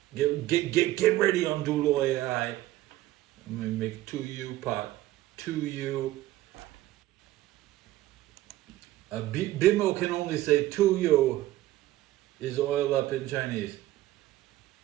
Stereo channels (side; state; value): left; quieter; 15.5 dB